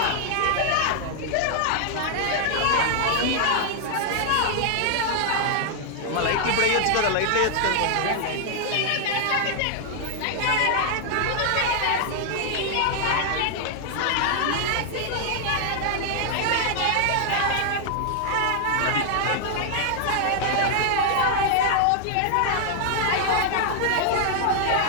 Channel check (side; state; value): both; different; correlation 0.00